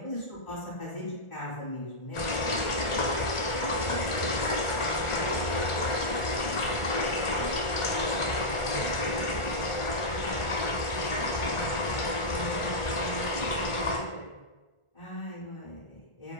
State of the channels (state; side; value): late; right; 1.4 ms